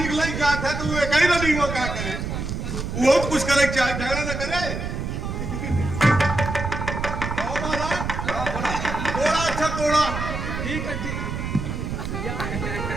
के लिए क्या था, तू एक ही रानी वो क्या करे? वो तो कुछ करे, क्या झगड़ा न करे। कहो महाराज, थोड़ा अच्छा थोड़ा ठीक है ठीक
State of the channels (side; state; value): right; noise; rumble, 4 dB below the sound